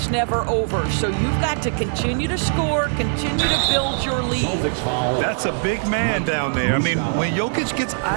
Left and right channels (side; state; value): left; silent; 65 dB below the other